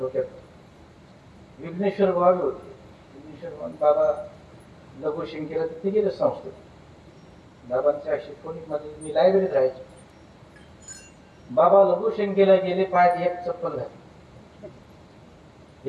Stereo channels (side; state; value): both; identical; correlation 1.00